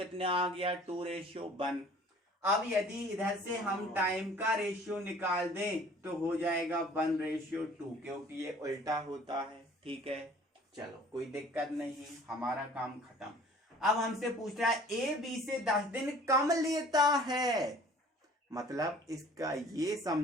आ गया, 2:1। अब यदि इधर से हम टाइम का रेशियो निकाल दें तो हो जाएगा 1:2, क्योंकि ये उल्टा होता है, ठीक है। चलो कोई दिक्कत नहीं, हमारा काम खत्म। अब हमसे पूछ रहा है ए बी से 10 दिन कम लेता है, मतलब इसका ये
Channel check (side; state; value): both; normal; correlation 0.50